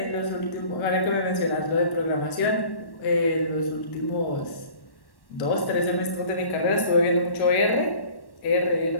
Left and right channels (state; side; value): late; right; 1.1 ms